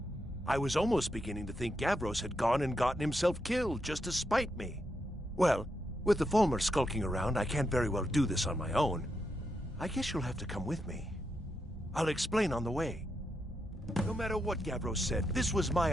I was almost beginning to think Gavros had gone and gotten himself killed just to spite me. Well, with the Fulmer skulking around, I can't very well do this on my own. I guess you'll have to come with me. I'll explain on the way. No matter what Gavros said, this was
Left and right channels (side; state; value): both; normal; correlation 0.83